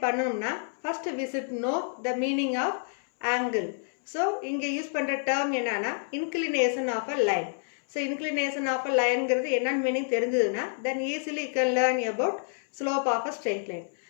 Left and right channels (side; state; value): right; silent; 59 dB below the other